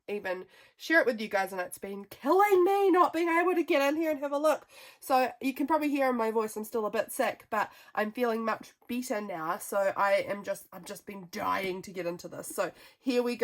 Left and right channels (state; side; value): identical; both; correlation 1.00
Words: even share it with you guys, and it's been killing me not being able to get in here and have a look. So you can probably hear in my voice I'm still a bit sick, but I'm feeling much better now. So I've just been dying to get into this. So here we